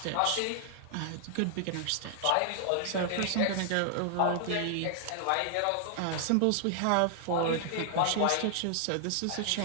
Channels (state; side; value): different; both; correlation 0.00